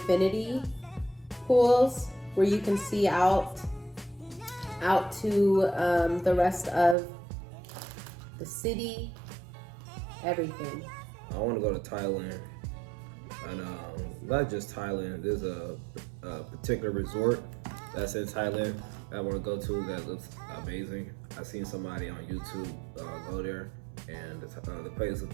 pools where you can see out to the rest of the city, everything. I want to go to Thailand, and not just Thailand. There's a particular resort that's in Thailand I want to go to that looks amazing. I've seen somebody on YouTube go there, and the place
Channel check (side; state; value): left; drops out; at 7.0 s